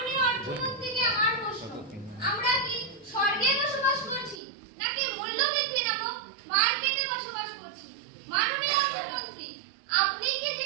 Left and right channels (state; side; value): drops out; left; at 4.4 s